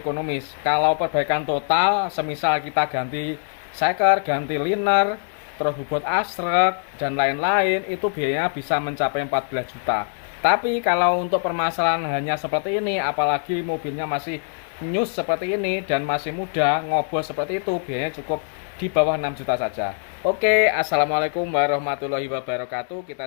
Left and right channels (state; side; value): silent; right; 63 dB below the other